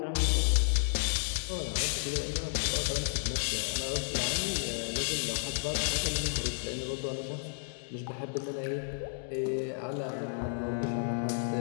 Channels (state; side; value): silent; right; digital silence